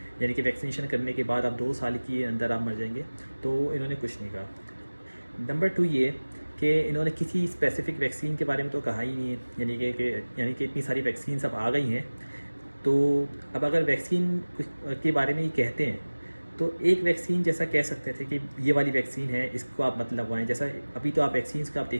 यानी कि वैक्सीनेशन करने के बाद आप 2 साल के अंदर आप मर जाएंगे, तो इन्होंने कुछ नहीं कहा। नंबर 2 ये कि इन्होंने किसी स्पेसिफिक वैक्सीन के बारे में तो कहा ही नहीं है, यानी कि इतनी सारी वैक्सीन अब आ गई हैं। तो अब अगर वैक्सीन के बारे में ही कहते हैं तो एक वैक्सीन जैसा कह सकते थे कि ये वाली वैक्सीन है, इसको आप मत लगवाएं। जैसा अभी तो आप वैक्सीन्स का आप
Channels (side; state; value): both; inverted; correlation -1.00